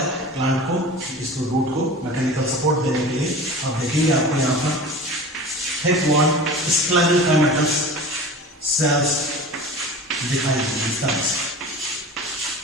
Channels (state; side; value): normal; both; correlation 0.36